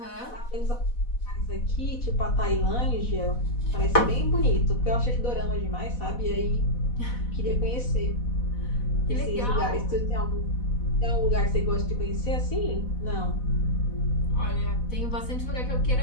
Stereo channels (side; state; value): right; late; 4.1 ms